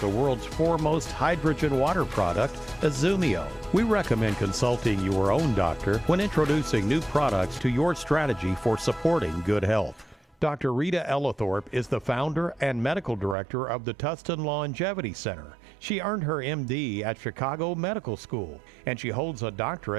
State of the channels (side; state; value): left; drops out; at 13.4 s